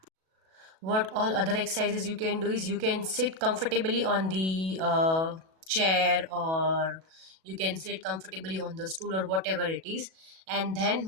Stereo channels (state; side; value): late; left; 37 ms